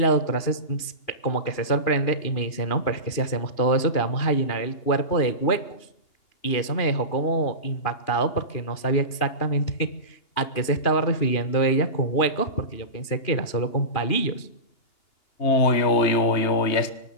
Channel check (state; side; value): late; right; 2.5 ms